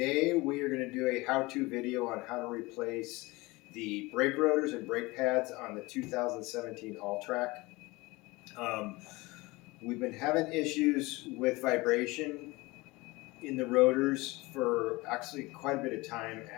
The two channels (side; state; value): right; quieter; 22.6 dB